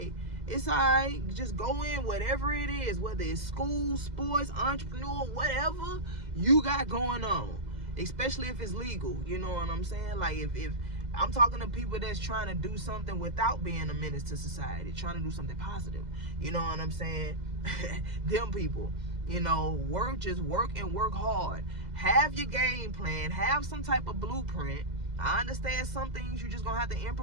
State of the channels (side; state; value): left; late; 2.0 ms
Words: it's alright, just go in whatever it is, whether it's school, sports, entrepreneur, whatever you got going on, especially if it's legal. You know what I'm saying? Like, if I'm talking to people that's trying to do something without being a menace to society, trying to do something positive. You know what I'm saying? Them people, you know, just work and work hard. Have your game plan. Have some type of blueprint. I understand some things you just gonna have to